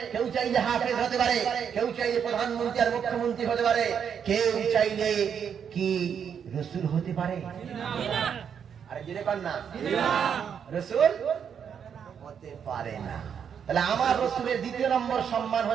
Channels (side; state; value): left; quieter; 7.7 dB